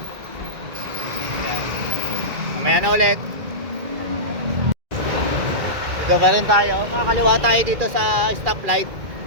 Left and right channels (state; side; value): late; left; 2.4 ms